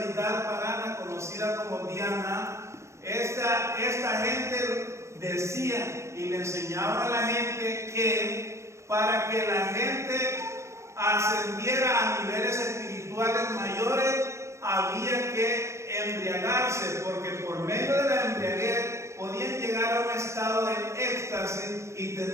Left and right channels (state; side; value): late; left; 0.14 ms